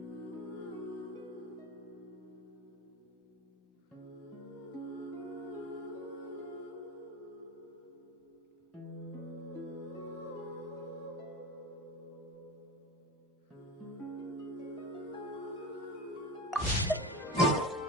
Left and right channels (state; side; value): normal; both; correlation 0.27